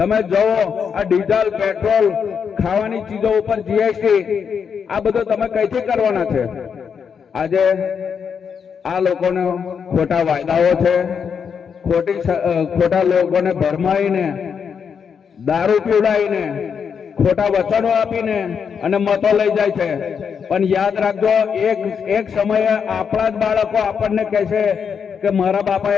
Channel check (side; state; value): right; quieter; 6.8 dB